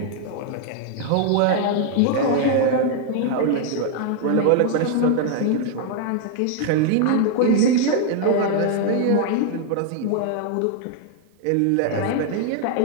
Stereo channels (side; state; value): both; different; correlation 0.00